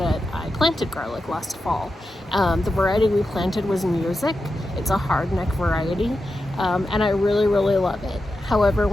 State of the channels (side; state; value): both; normal; correlation 0.90